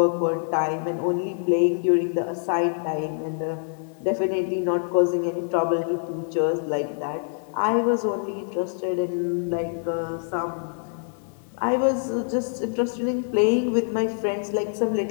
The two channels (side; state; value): right; silent; digital silence